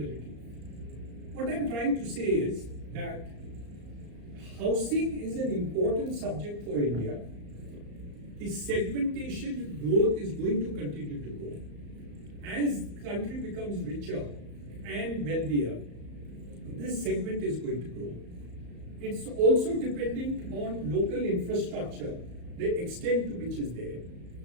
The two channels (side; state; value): left; late; 34 ms